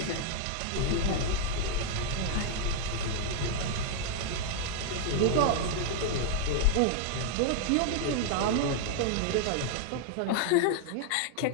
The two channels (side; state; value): both; different; correlation -0.01